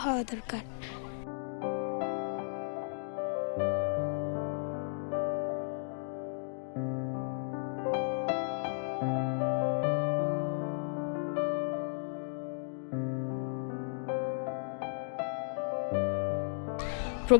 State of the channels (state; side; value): silent; right; digital silence